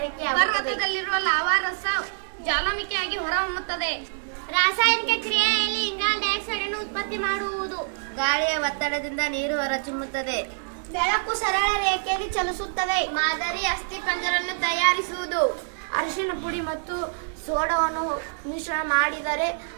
ಪರ್ವತದಲ್ಲಿರುವ ಲಾವಾರಸ ಜ್ವಾಲಾಮುಖಿಯಾಗಿ ಹೊರಹೊಮ್ಮುತ್ತದೆ. ರಾಸಾಯನಿಕ ಕ್ರಿಯೆಯಲ್ಲಿ ಇಂಗಾಲ ಡೈಆಕ್ಸೈಡ್ ಅನ್ನು ಉತ್ಪತ್ತಿ ಮಾಡುವುದು. ಗಾಳಿಯ ಒತ್ತಡದಿಂದ ನೀರು ಹೊರಚಿಮ್ಮುತ್ತದೆ. ಬೆಳಕು ಸರಳ ರೇಖೆಯಲ್ಲಿ ಚಲಿಸುತ್ತದೆ. ಮಾದರಿ ಅಸ್ಥಿಪಂಜರವನ್ನು ತಯಾರಿಸುವುದು. ಅರಿಶಿಣ ಪುಡಿ ಮತ್ತು ಸೋಡಾವನ್ನು ಮಿಶ್ರಣ ಮಾಡಿದರೆ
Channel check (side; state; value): left; silent; 61 dB below the other